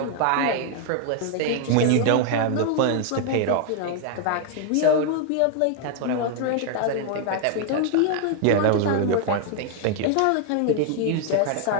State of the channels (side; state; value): both; different; correlation 0.00